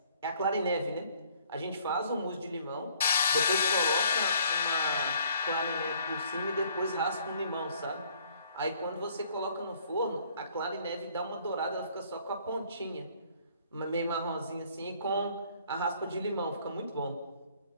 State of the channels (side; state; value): both; inverted; correlation -0.61